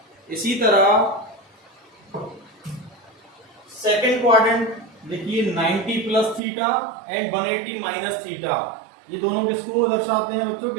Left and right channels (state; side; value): drops out; left; at 6.4 s